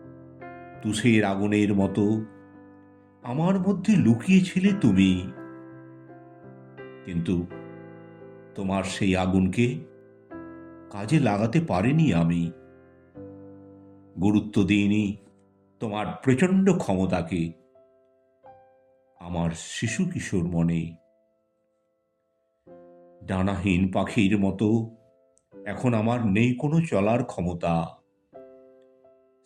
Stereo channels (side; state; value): both; identical; correlation 1.00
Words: তুষের আগুনের মতো আমার মধ্যে লুকিয়েছিলে তুমি, কিন্তু তোমার সেই আগুনকে কাজে লাগাতে পারিনি আমি। গুরুত্ব দিইনি তোমার প্রচণ্ড ক্ষমতাকে আমার শিশু কিশোর মনে। ডানাহীন পাখির মতো এখন আমার নেই কোনো চলার ক্ষমতা।